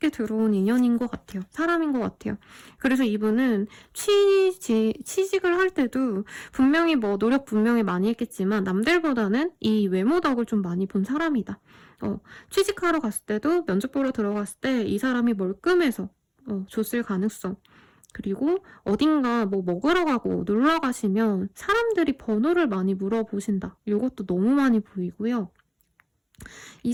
들어온 인연인 것 같아요. 사람인 것 같아요. 그래서 이분은 취직을 할 때도 분명히 뭐 노력 분명히 많이 했겠지만 남들보다는 이 외모 덕을 좀 많이 본 사람이다. 취직하러 갔을 때도 면접 보러 들어갔을 때 이 사람이 멀끔해서 줬을 가능성. 그리고 어딘가 뭐 먹으러 가고 놀러 가시면 사람들이 번호를 많이 물어보신다. 이것도 너무 많이 보이고요. 이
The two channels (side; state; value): both; identical; correlation 1.00